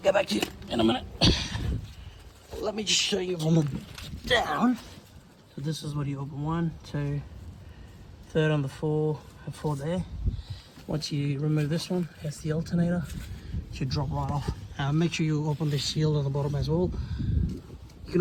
back to you in a minute. Let me just show you from the down. So this is what you open: 1, 2, third on the 4, and 4 there. Once you remove this one, that's the alternator. It should drop right off. Make sure you open the shield on the bottom as well. You can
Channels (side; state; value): both; identical; correlation 1.00